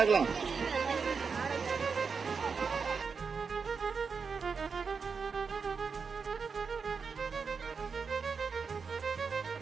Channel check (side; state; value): left; quieter; 5.4 dB